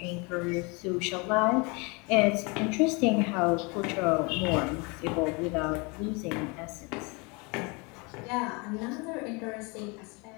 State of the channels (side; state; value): right; quieter; 29.2 dB